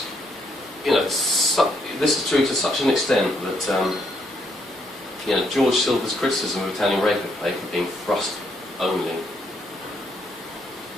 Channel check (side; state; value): both; normal; correlation 0.73